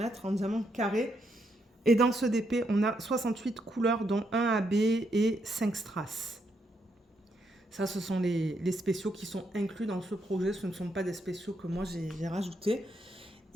en diamant carré. Et dans ce DP, on a 68 couleurs, dont 1 AB et 5 strass. Ça, ce sont les spéciaux qui sont inclus dans ce projet. Ce ne sont pas des spéciaux que moi, j'ai rajoutés.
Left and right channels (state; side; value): normal; both; correlation 0.77